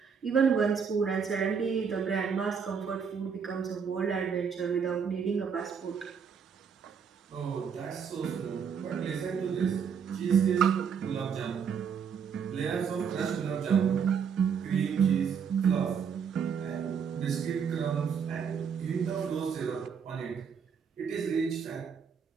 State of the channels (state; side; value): quieter; left; 6.7 dB